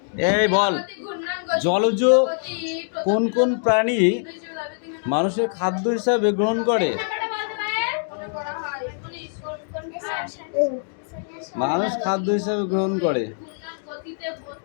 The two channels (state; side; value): silent; right; digital silence